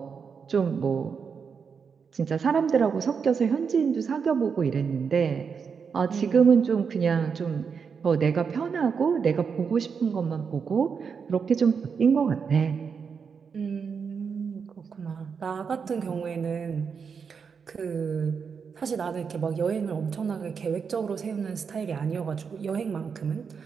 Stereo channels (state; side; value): quieter; left; 6.1 dB